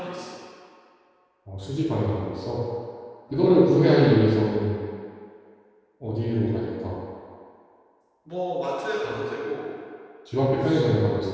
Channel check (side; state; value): both; identical; correlation 1.00